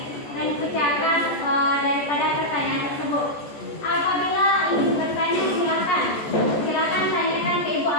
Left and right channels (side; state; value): right; late; 14 ms